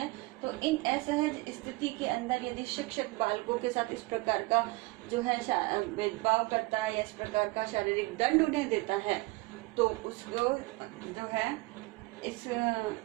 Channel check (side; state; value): left; quieter; 23.0 dB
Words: तो इन असहज स्थिति के अंदर यदि शिक्षक बालकों के साथ इस प्रकार का जो है भेदभाव करता है या इस प्रकार का शारीरिक दंड उन्हें देता है, तो उसको जो है इस